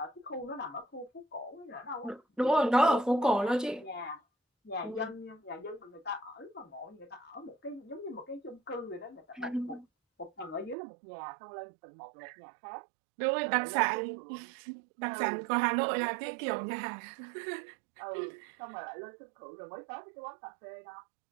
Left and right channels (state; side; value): drops out; left; at 10.8 s